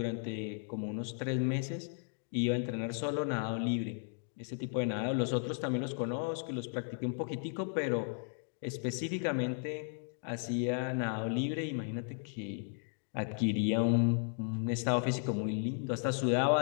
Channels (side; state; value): right; silent; 54 dB below the other